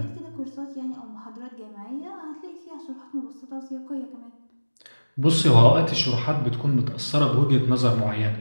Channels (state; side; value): inverted; both; correlation -1.00